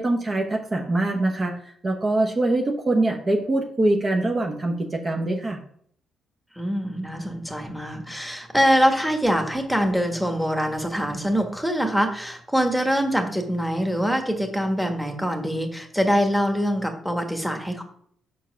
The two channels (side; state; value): both; normal; correlation 0.93